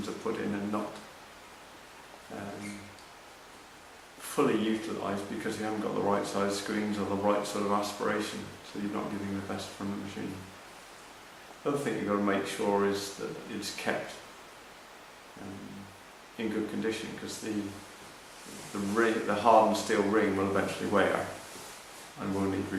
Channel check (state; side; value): identical; both; correlation 1.00